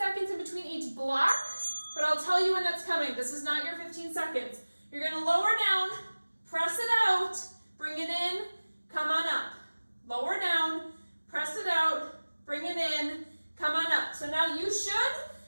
in between each block, but I'll tell you when that's coming. This is not your 15 seconds. You're going to lower down, press it out, bring it in, come on up. Lower down, press it out, bring it in, come on up. So now you should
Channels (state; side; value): inverted; both; correlation -1.00